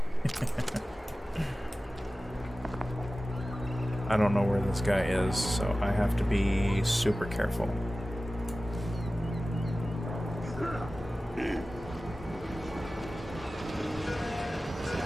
I don't know where this guy is, so I have to be super careful.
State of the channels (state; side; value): normal; both; correlation 0.96